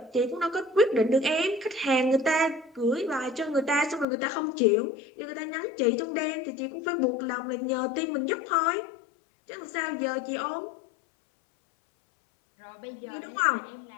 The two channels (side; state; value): right; drops out; at 4.0 s